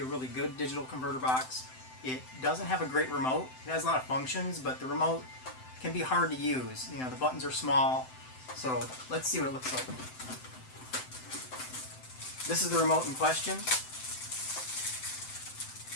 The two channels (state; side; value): late; right; 7.8 ms